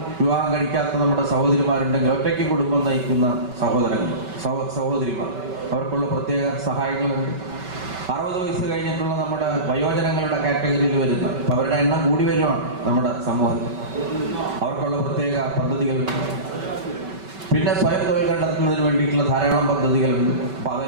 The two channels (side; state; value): left; late; 5.4 ms